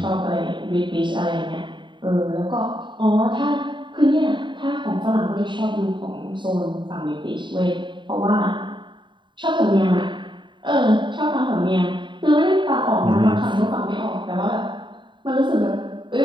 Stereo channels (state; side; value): late; left; 0.23 ms